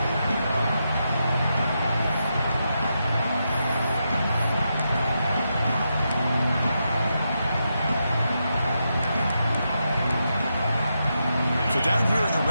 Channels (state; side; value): inverted; both; correlation -0.85